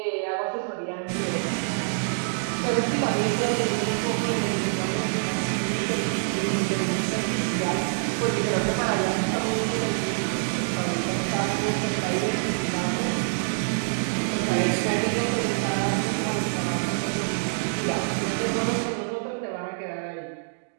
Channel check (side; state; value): left; silent; digital silence